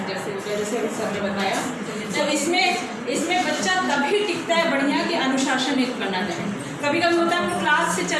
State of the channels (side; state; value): both; identical; correlation 1.00